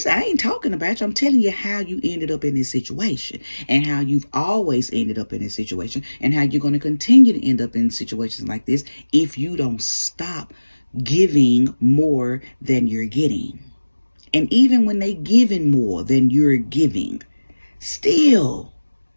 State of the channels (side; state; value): both; inverted; correlation -1.00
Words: ain't talking about you. I'm telling you how you ended up in this situation, and how you've always ended up in this situation, and how you're going to continue to end up in situations like this if you don't stop giving more than you're getting. And even when they giving more than you're giving, still